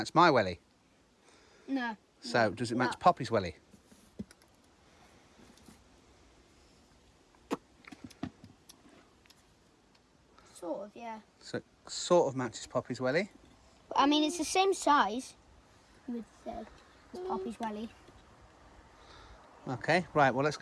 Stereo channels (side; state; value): both; identical; correlation 1.00